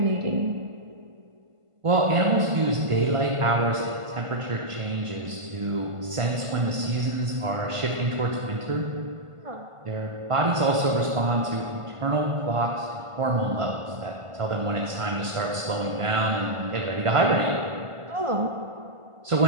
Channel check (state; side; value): late; left; 1.5 ms